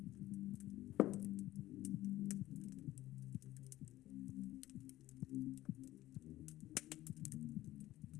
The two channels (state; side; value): quieter; right; 15.6 dB